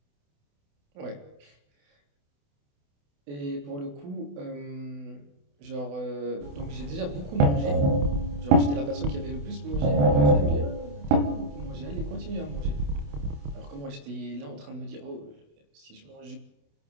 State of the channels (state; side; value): late; left; 28 ms